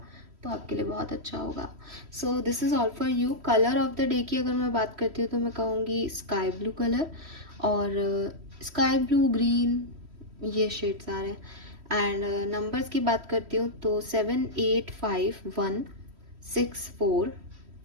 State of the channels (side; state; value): left; late; 3.1 ms